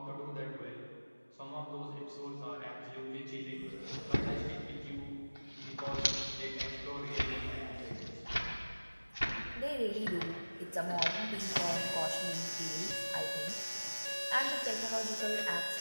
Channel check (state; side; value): inverted; both; correlation -1.00